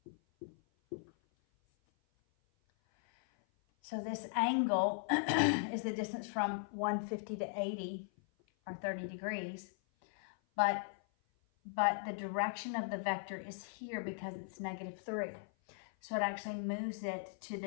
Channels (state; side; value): silent; right; 52 dB below the other